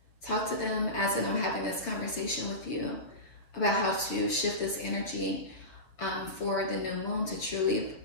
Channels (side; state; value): right; late; 7.0 ms